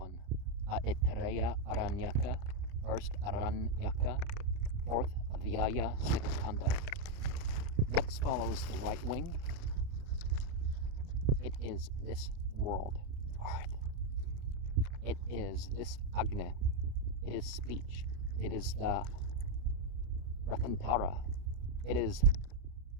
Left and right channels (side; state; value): left; late; 29 ms